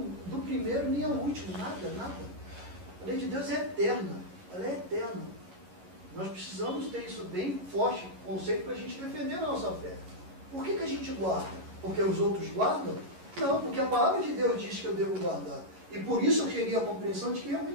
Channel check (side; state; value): left; late; 11 ms